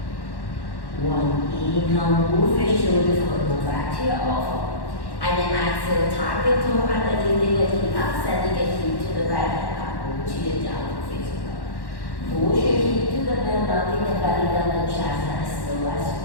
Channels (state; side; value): late; right; 1.1 ms